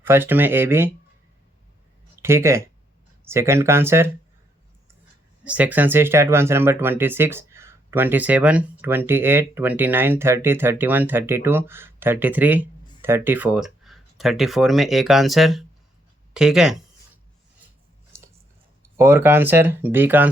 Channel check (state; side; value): normal; both; correlation 0.74